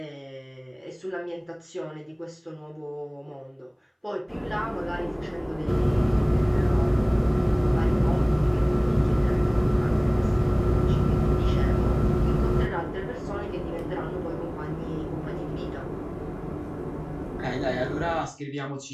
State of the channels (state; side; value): identical; both; correlation 1.00